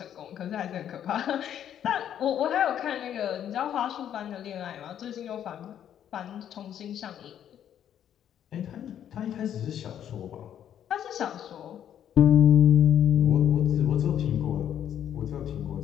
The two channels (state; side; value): quieter; right; 10.0 dB